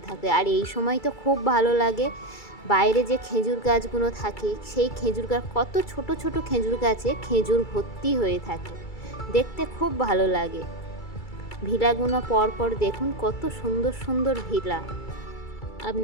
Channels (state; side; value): late; right; 2.3 ms